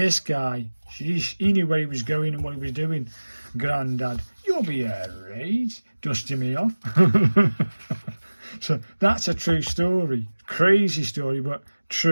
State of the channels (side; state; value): both; inverted; correlation -1.00